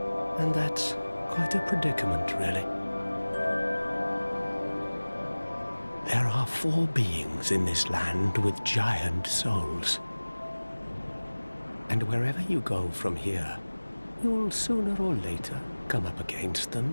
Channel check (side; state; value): both; inverted; correlation -1.00